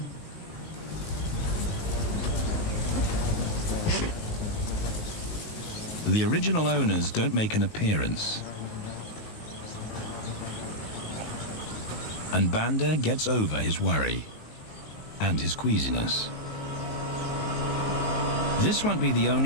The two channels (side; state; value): right; late; 19 ms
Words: The original owners don't make an appearance. And Banda gets over his worry and his queasiness. This won't be the